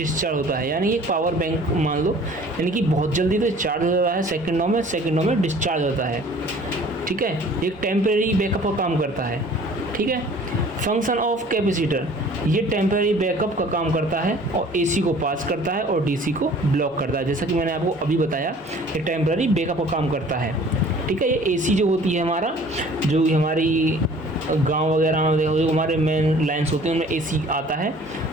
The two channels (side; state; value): both; normal; correlation 0.50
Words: होता है। यानी एक पावर बैंक मान लो, यानी कि बहुत जल्दी तो चार्ज हो जाता है, सेकंडों में डिस्चार्ज होता है। ठीक है, एक टेम्परेरी बैकअप का काम करता है। ठीक है, फंक्शन ऑफ कैपेसिटर, ये टेम्परेरी बैकअप का काम करता है और एसी को पास करता है और डीसी को ब्लॉक करता है। जैसा कि मैंने आपको अभी बताया, ये टेम्परेरी बैकअप का काम करता है। ठीक है, ये एसी जो होती है हमारा, जो हमारी गांव वगैरह में जो हमारे मेन लाइन्स होते हैं उनमें एसी आता है